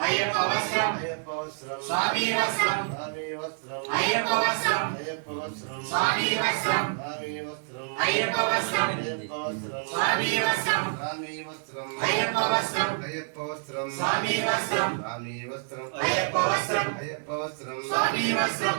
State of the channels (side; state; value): left; silent; digital silence